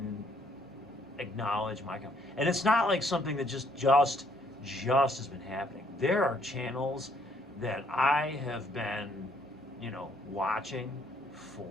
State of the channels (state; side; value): normal; both; correlation 0.66